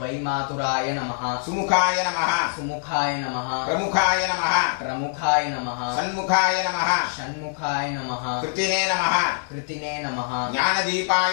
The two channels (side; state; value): right; silent; digital silence